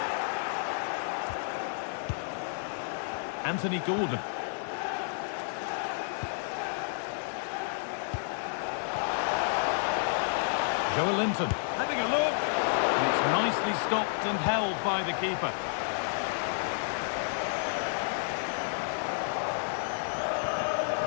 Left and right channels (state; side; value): silent; right; digital silence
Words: Anthony Gordon. Joe Linton having a look. And it's nicely stopped and held by the keeper.